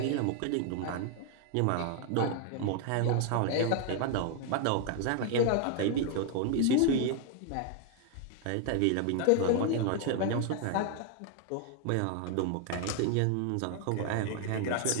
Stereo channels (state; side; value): different; both; correlation 0.00